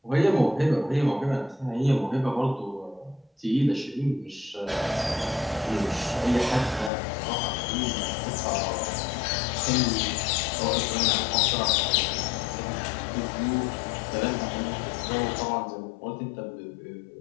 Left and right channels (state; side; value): drops out; right; at 6.9 s